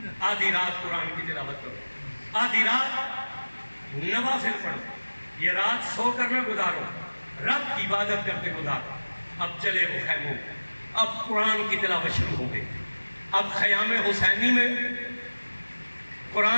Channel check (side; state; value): both; inverted; correlation -1.00